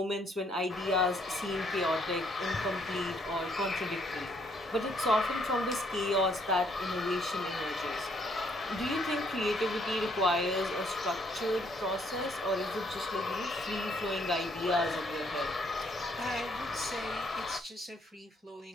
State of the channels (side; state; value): both; normal; correlation 0.68